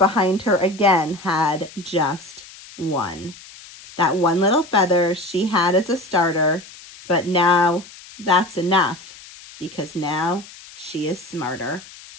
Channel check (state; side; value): noise; left; hiss, 19 dB below the sound